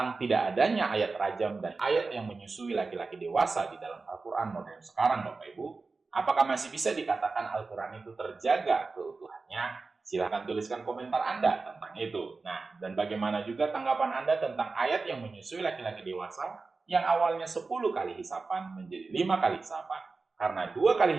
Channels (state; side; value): quieter; left; 4.0 dB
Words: tidak adanya ayat rajam dan ayat yang menyusui laki-laki dewasa di dalam Al-Quran modern sekarang, Bapak Ibu? Apakah masih bisa dikatakan Al-Quran itu terjaga keutuhannya? Silahkan tuliskan komentar Anda tentang itu. Nah, dan bagaimana juga tanggapan Anda tentang ayat yang menyusui laki-laki dewasa yang awalnya 10 kali hisapan menjadi 5 kali hisapan. Karena 2 kali